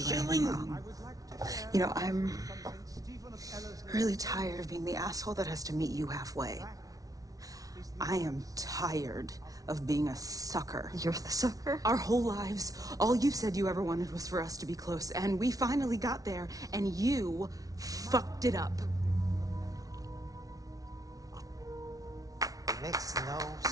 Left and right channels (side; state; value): left; late; 0.18 ms